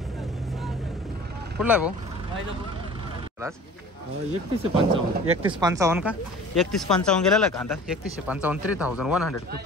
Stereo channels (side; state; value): both; normal; correlation 0.44